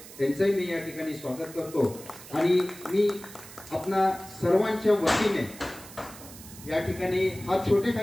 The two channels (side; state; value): right; noise; hiss, 17 dB below the sound